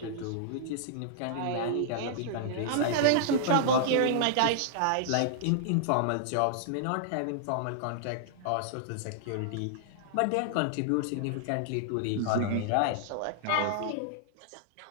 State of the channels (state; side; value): different; both; correlation -0.01